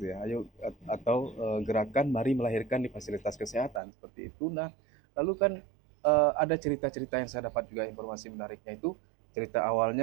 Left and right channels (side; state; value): left; drops out; at 3.8 s